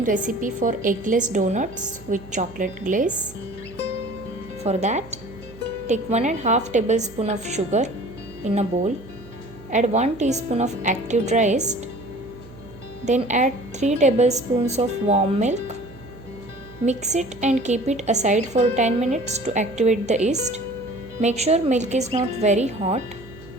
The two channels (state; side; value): noise; right; hum, 20 dB below the sound